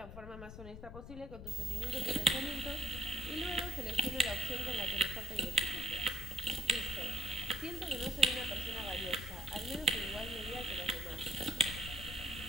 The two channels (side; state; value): left; noise; rumble, 10 dB below the sound